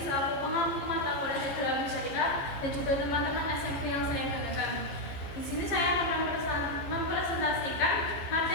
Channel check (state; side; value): late; right; 15 ms